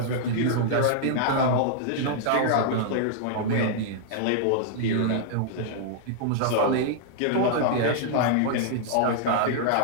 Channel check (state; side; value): different; both; correlation -0.01